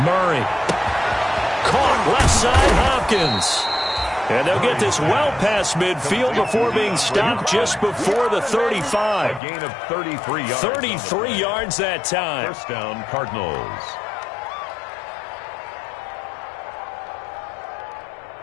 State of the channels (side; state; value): right; drops out; at 9.4 s